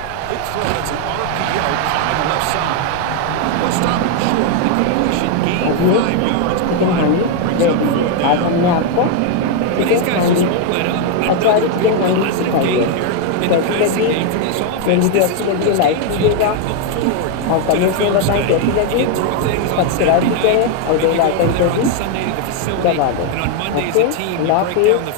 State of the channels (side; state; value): both; different; correlation 0.01